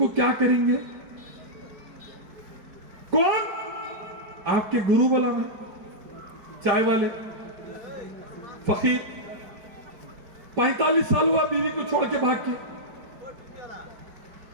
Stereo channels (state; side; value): late; left; 4.6 ms